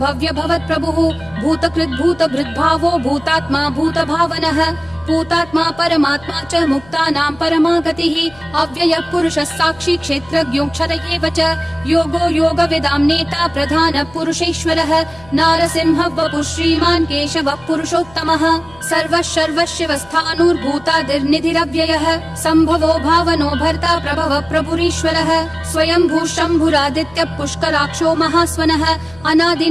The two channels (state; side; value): noise; left; hum, 24 dB below the sound